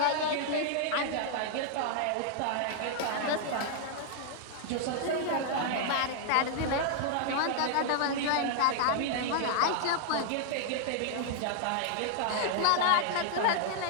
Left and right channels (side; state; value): both; different; correlation 0.00